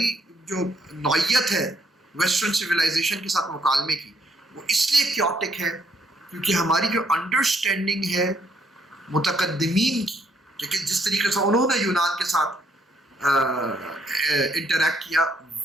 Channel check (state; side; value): normal; both; correlation 0.70